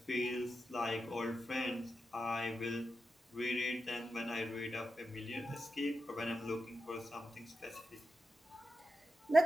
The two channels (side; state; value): both; normal; correlation 0.90